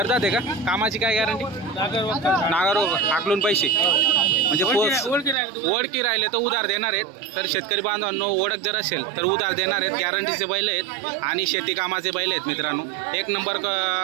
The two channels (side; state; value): left; drops out; at 5.4 s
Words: आहे का? कामाची काय गॅरंटी? नागर हाकलून पैसे म्हणजे ओळखी राहिले तर उधार देणार आहेत. तर शेतकरी बांधवांनो ओळख जर असेल तर उधार देणार आहेत. गॅरंटीचे बैल आहेत आणि शेती कामाचे बैल आहेत मित्रांनो. एक नंबर